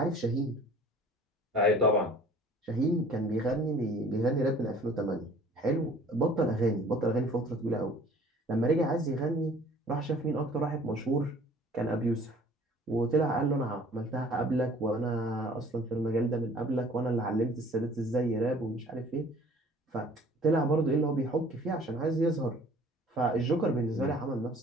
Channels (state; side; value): normal; both; correlation 0.51